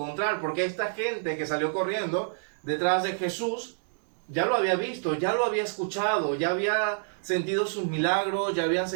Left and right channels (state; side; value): silent; left; 58 dB below the other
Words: porque esta gente que salió corriendo detrás de Jesús ya lo había visto, ya lo había escuchado, ya había sentido sus milagros, ya habían